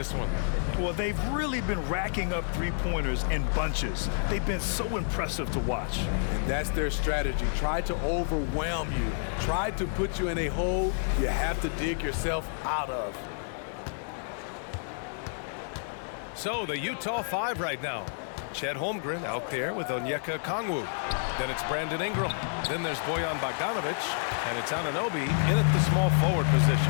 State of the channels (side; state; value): right; silent; digital silence